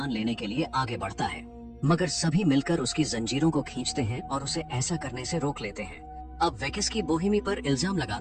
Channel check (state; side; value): identical; both; correlation 1.00